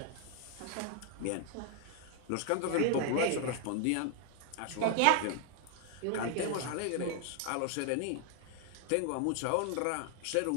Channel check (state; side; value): different; both; correlation 0.00